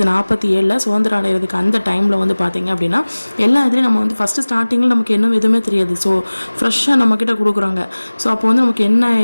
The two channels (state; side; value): inverted; both; correlation -1.00